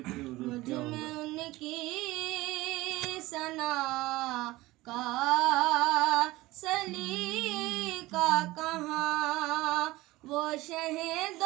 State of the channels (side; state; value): left; quieter; 19.2 dB